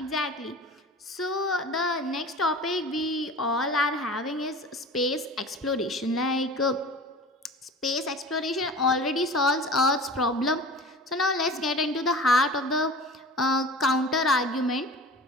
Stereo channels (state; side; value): normal; both; correlation 0.38